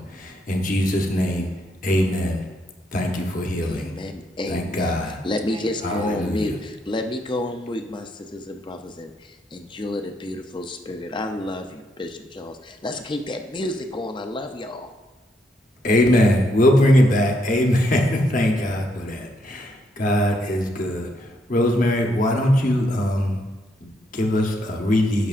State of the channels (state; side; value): normal; both; correlation 0.76